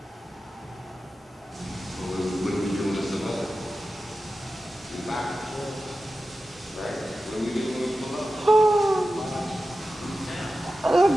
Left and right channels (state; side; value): normal; both; correlation 0.93